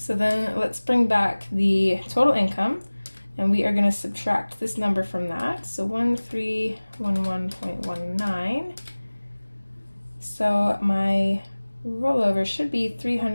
then let's bring back the total income, and we are going to subtract this number from that. So 1311.19. So my rollover should be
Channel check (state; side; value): inverted; both; correlation -1.00